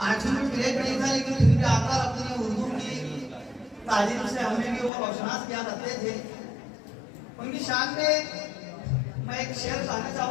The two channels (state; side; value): drops out; right; at 4.9 s